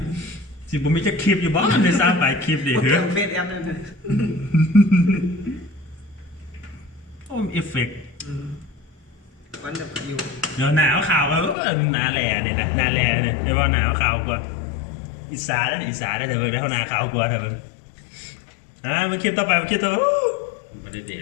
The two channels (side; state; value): right; drops out; at 11.6 s